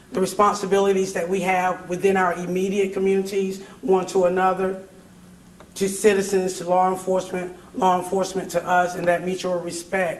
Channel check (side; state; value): both; identical; correlation 1.00